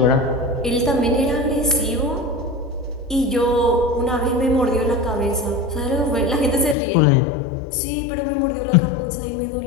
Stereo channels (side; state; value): right; drops out; at 6.8 s